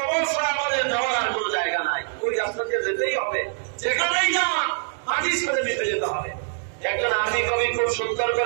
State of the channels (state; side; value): silent; left; digital silence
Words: ছাড়া আমাদের যাওয়ার আর কোন জায়গা নাই, ওই রাস্তা দিয়ে যেতেই হবে। যেখানেই যান মাটির সাথে মিশে যেতে হবে। একজন আরবি কবি খুব সুন্দর